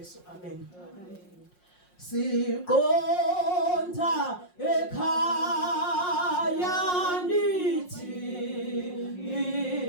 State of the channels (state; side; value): late; right; 5.6 ms